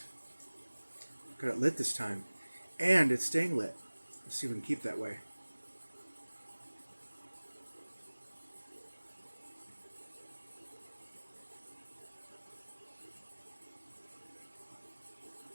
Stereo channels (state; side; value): inverted; both; correlation -1.00